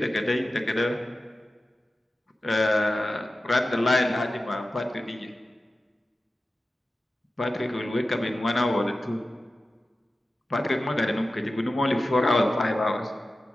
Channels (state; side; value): normal; both; correlation 0.94